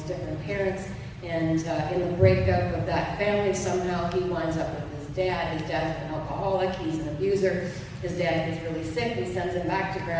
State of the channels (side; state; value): both; identical; correlation 1.00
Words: different parents. And in the breakup of that family, somehow he winds up with his dad. His dad's an alcoholic, he's an abuser. His dad gets really sick and sends him back to